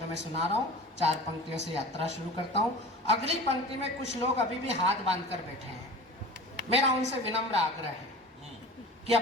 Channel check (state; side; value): normal; both; correlation 0.37